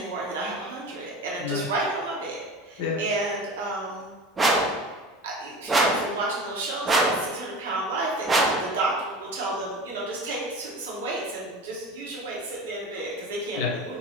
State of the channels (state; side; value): normal; both; correlation 0.33